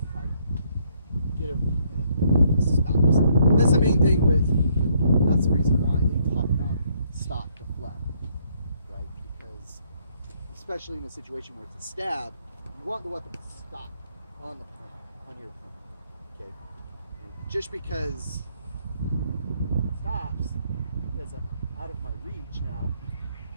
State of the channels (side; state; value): both; inverted; correlation -0.69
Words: get him and it stops. And that's the main thing that's the reason why they talk about stop deflect. Right? Because especially in a situation where it's a stab, you want the weapon to stop on your opponent. Okay? And just because it stops, because I'm out of my reach now,